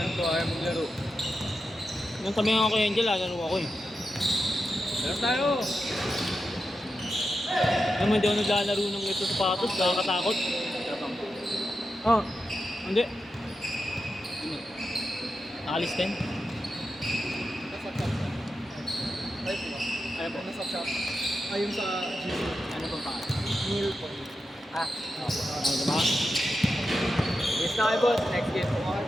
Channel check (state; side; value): normal; both; correlation 0.89